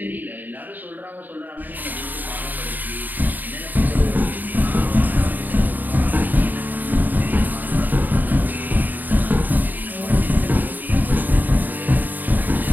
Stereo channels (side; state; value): left; late; 0.087 ms